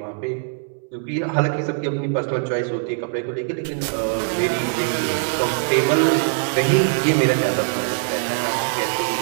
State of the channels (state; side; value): silent; left; 64 dB below the other